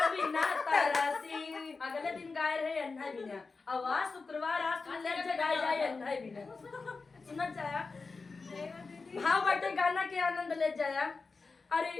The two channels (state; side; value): quieter; right; 4.2 dB